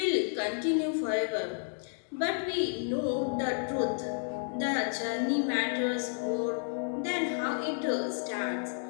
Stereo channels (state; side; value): silent; right; digital silence